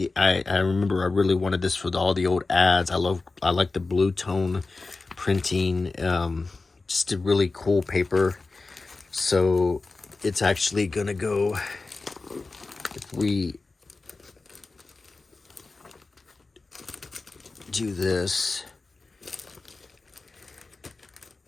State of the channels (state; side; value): quieter; right; 3.7 dB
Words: I remember I really wanted this for all the old ads. I like the blue tone printing. Just a really cool paper. So it's actually going to go, if we do this,